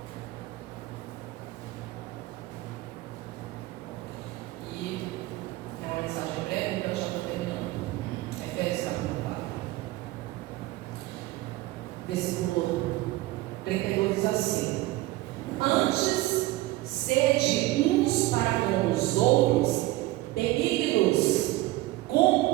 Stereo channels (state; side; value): quieter; left; 18.3 dB